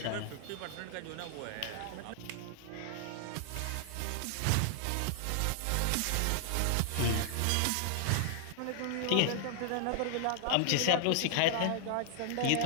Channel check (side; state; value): both; different; correlation 0.00